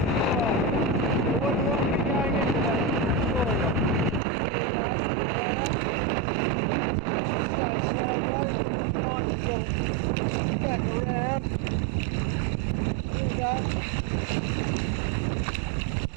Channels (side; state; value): left; drops out; at 4.2 s